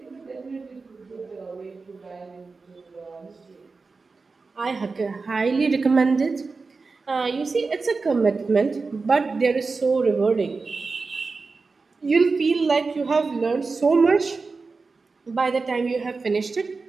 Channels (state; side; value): quieter; left; 4.2 dB